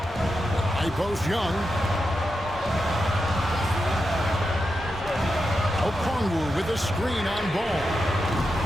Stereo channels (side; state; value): both; normal; correlation 0.88